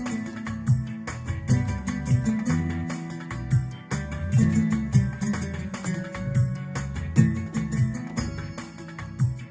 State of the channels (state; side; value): identical; both; correlation 1.00